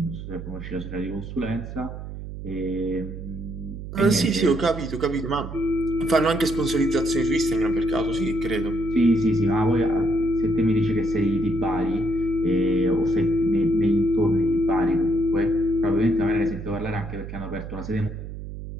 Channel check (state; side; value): noise; right; hum, 10 dB below the sound